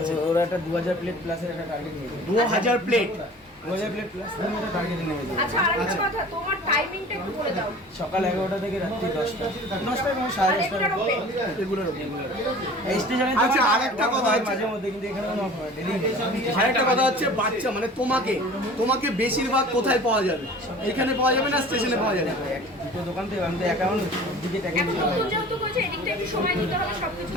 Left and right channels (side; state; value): both; normal; correlation 0.43